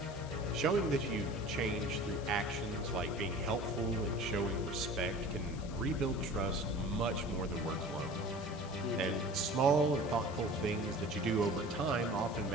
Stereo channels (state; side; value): noise; left; hiss, 18 dB below the sound